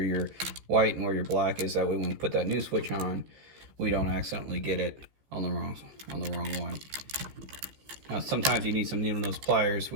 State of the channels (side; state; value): left; late; 15 ms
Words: white and where your black is. That way when we put that new switch on, we don't accidentally get it on the wrong one. Now sometimes you need some needle nose pliers,